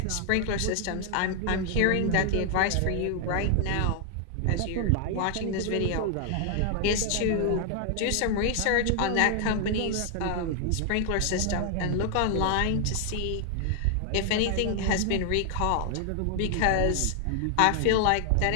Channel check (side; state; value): both; different; correlation 0.00